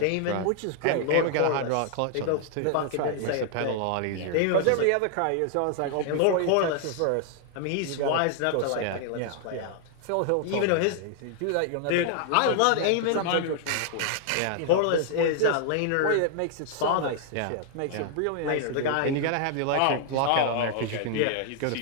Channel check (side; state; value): both; different; correlation 0.00